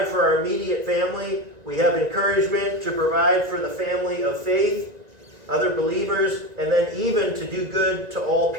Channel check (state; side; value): late; left; 1.9 ms